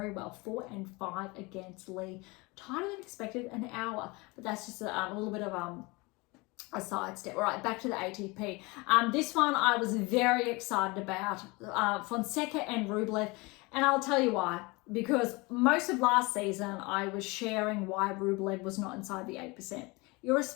well, 4-5 against Lee. Tighter than expected, an hour, but that's just a little bit of a sidestep. All right, back to the ATP. This one I was very excited about, Fonseca and Rublev, and I'll tell you why. Because most of last season I was sharing why Rublev was not inside the 8%.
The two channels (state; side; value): quieter; right; 25.4 dB